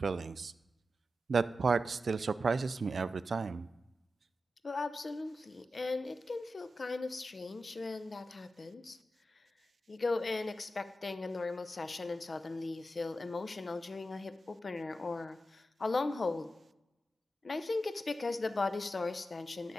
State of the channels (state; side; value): normal; both; correlation 0.91